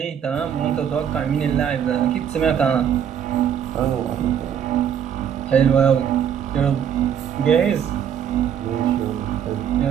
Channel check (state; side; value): quieter; left; 8.7 dB